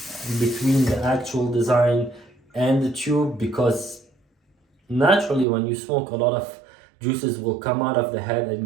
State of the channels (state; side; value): drops out; left; at 5.5 s